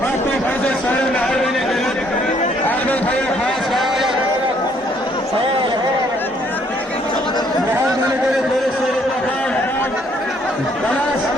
Hakkı Hazret Sayın Ermeni Devlet Ahmet Hayır Has Kaya Muhammed'in Devlet Sayın Bakan Banas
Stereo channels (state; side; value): normal; both; correlation 0.66